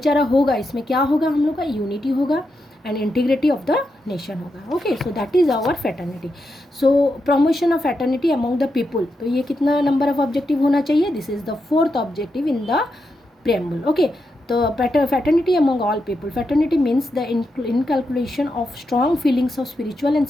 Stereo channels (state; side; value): normal; both; correlation 0.85